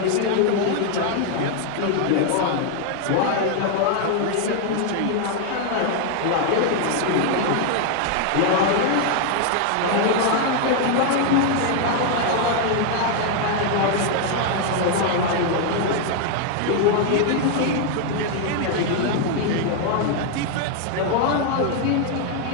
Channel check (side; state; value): both; different; correlation 0.00